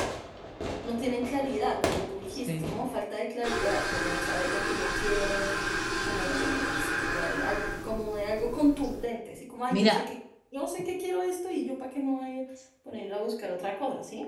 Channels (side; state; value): both; identical; correlation 1.00